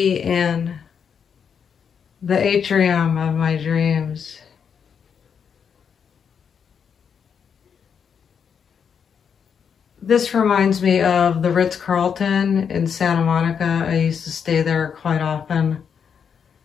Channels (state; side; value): quieter; right; 7.1 dB